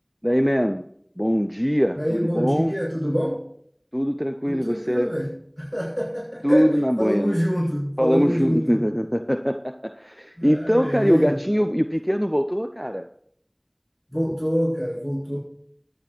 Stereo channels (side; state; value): both; identical; correlation 1.00